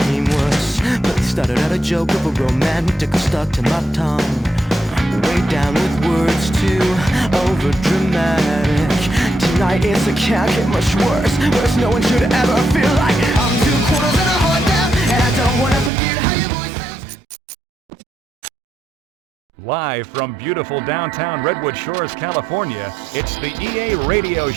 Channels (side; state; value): left; drops out; at 15.9 s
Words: worse. But it started out a joke of a romantic stuck to my tongue. Way down with words too over dramatic. Tonight it's a can't get much worse. Worse, no one should ever feel like I'm 2 quarters and a heart down, and I don't wanna forget how your voice sounds. Live from beautiful downtown Redwood Shores, California, it's the EA Radio